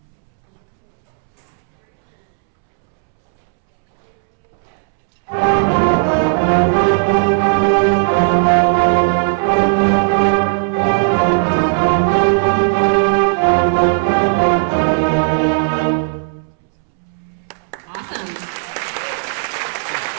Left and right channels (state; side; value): silent; left; 69 dB below the other